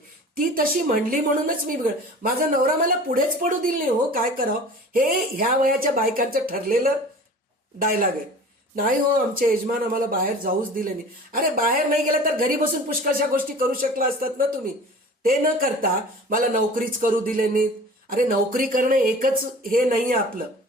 ती तशी म्हणली म्हणूनच मी बिघड, माझा नवरा मला पुढेच पडू दिल नाही, हो काय करावं, हे ह्या वयाच्या बायकांचं ठरलेलं डायलॉग आहे. नाही हो आमचे यजमान आम्हाला बाहेर जाऊच दिले नाही. अरे बाहेर नाही गेलं तर घरी बसून पुष्कळशा गोष्टी करू शकला असतात ना तुम्ही. ते न करता मला नोकरीच करू दिले नाहीत. अरे नोकरी करणं एकच हे नाहीये आपलं.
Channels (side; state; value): both; normal; correlation 0.41